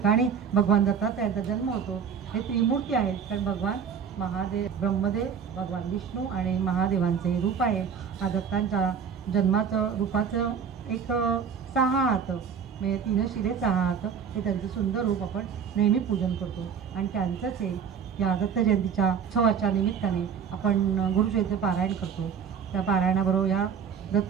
भगवान दत्तात्रयांचा जन्म होतो. हे त्रिमूर्ती आहेत, कारण भगवान महादेव, ब्रह्मदेव, भगवान विष्णू आणि महादेवांचे रूप आहे. हा दत्तांच्या जन्माचं रूपाचं एक 6 हात म्हणजे 3 शिरे 6 हात हे त्यांचं सुंदर रूप आपण नेहमी पूजन करतो. आणि त्यांचंच हे या दत्त जयंतीच्या उत्सवाच्या निमित्ताने आपण गुरुचरित्र पारायण करतो. त्या पारायणाबरोबर या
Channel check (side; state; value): left; quieter; 7.0 dB